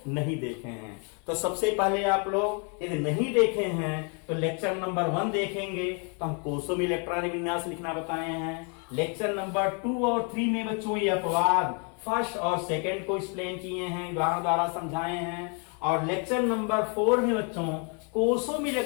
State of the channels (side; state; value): right; quieter; 37.9 dB